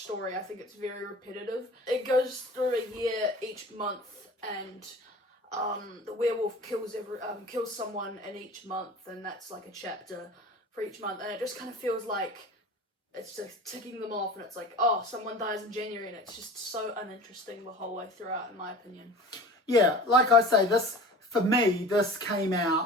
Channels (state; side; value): normal; both; correlation 0.39